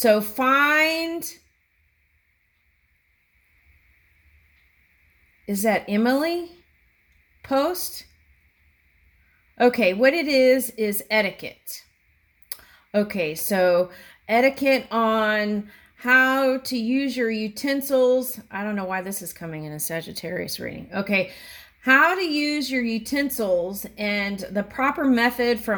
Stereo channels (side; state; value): both; identical; correlation 1.00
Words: find, is that Emily post? Okay, what it is etiquette. Okay, so etiquette on how to use your utensils. I don't know why this is coming in a Sagittarius reading. Okay, how to use your utensils and the proper method